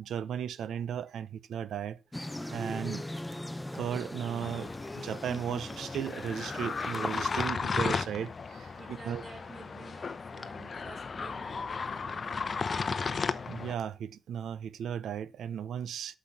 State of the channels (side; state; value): both; normal; correlation 0.77